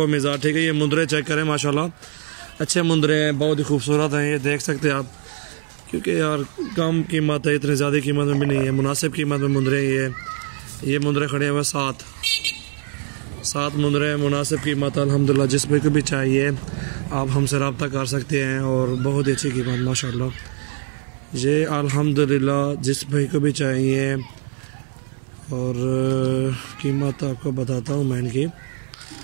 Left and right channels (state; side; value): silent; left; 56 dB below the other